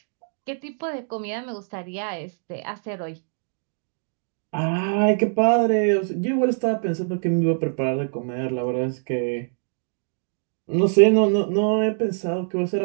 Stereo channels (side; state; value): left; silent; digital silence